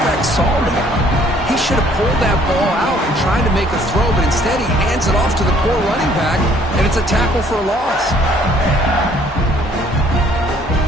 saw there. He should have pulled that ball out and tried to make a throw, but instead he hands it off to the poor running back, and it's a tackle for a loss.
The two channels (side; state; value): both; normal; correlation 0.61